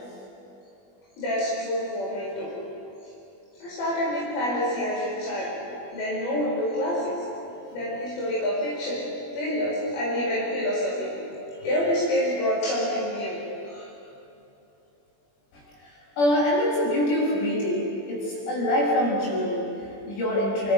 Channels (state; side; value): late; right; 21 ms